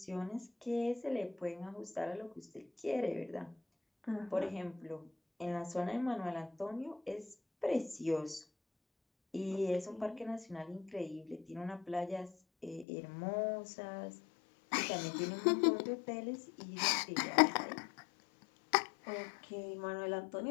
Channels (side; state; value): right; drops out; at 12.9 s